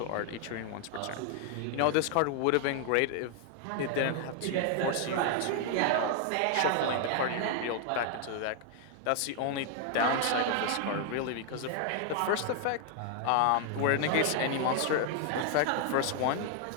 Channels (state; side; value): different; both; correlation 0.00